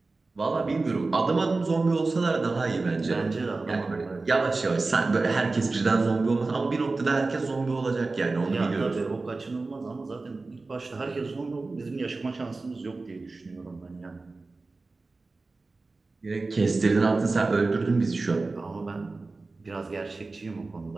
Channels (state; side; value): quieter; left; 3.6 dB